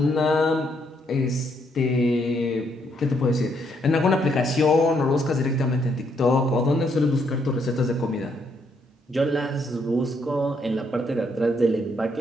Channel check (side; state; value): both; normal; correlation 0.73